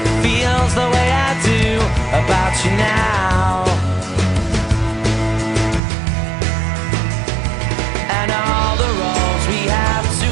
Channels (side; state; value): left; drops out; at 5.8 s